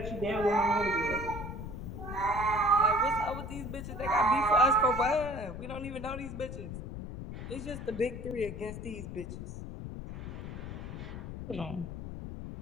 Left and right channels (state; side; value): noise; left; rumble, 8 dB below the sound